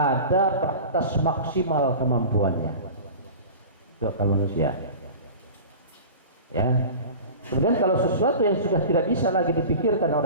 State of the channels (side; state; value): both; inverted; correlation -0.36